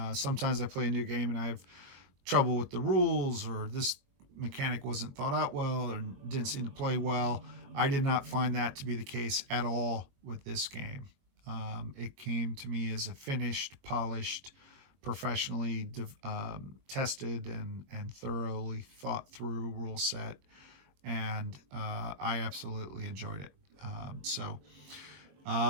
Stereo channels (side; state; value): left; late; 21 ms